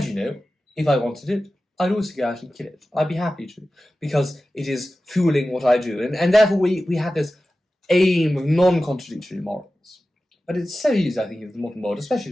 you know, if I wanted it, I'd also go out and kill it. I'd be happy to, because it is fueling what I do. And therefore we have this aim of non-contradictory morals. But it's so easy, I think, in the modern world, especially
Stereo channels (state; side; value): normal; both; correlation 0.95